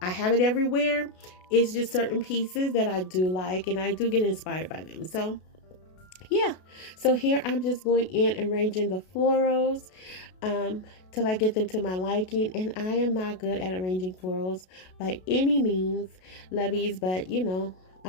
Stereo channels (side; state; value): right; late; 32 ms